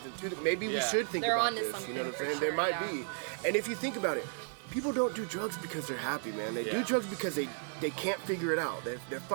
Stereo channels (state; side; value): silent; left; 55 dB below the other